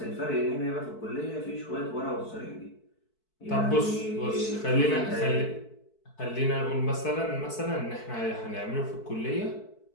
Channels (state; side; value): late; right; 4.6 ms